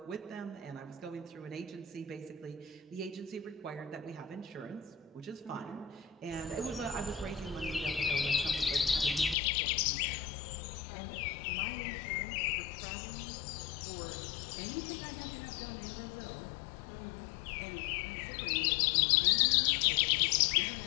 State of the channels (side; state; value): right; drops out; at 9.3 s